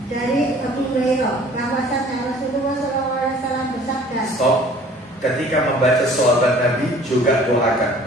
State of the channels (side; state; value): both; normal; correlation 0.51